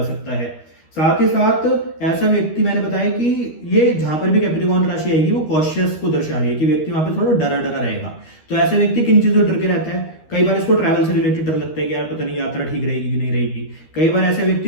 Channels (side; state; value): right; late; 13 ms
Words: सकता है। साथ ही साथ ऐसा व्यक्ति, मैंने बताया कि ये जहां पर भी कैप्रिकॉर्न राशि आएगी वो कॉशियस को दर्शा रही है कि व्यक्ति वहां पे थोड़ा डरा डरा रहेगा। तो ऐसा व्यक्ति किन चीजों डर के रहता है? कई बार इसको ट्रैवल से रिलेटेड डर लगता है कि यार पता नहीं यात्रा ठीक रहेगी कि नहीं रहेगी। कई बार ऐसा व्यक्ति